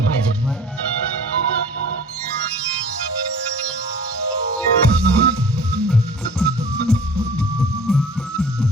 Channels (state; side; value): normal; both; correlation 0.45